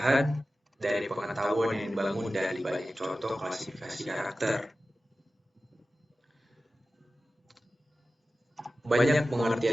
dari pengetahuan yang dibangun dari banyak contoh klasifikasi karakter. Banyak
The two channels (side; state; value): both; normal; correlation 0.95